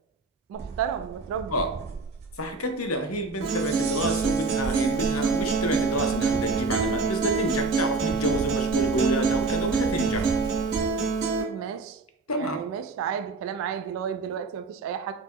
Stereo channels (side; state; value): left; quieter; 3.6 dB